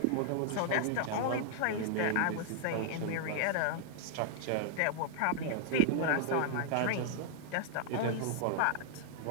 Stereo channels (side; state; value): both; different; correlation 0.00